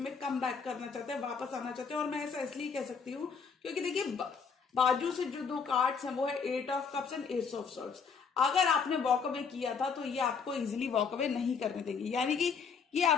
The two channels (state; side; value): quieter; right; 5.8 dB